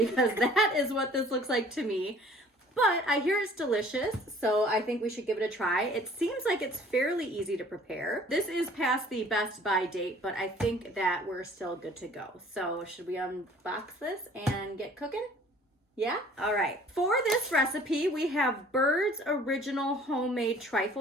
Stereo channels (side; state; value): both; normal; correlation 0.52